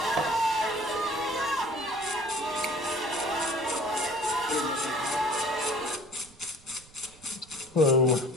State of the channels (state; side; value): noise; right; rumble, 25 dB below the sound